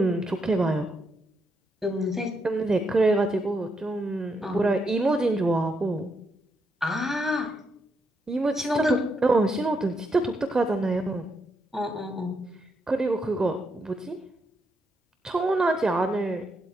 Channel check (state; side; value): normal; both; correlation 0.80